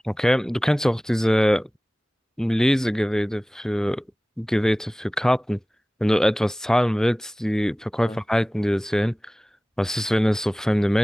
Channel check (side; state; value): both; normal; correlation 0.98